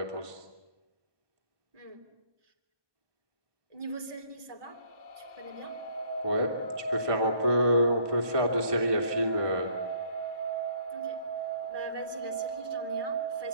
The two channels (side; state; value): left; late; 1.2 ms